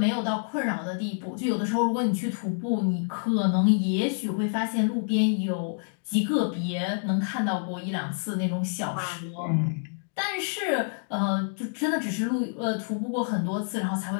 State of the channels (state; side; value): silent; right; digital silence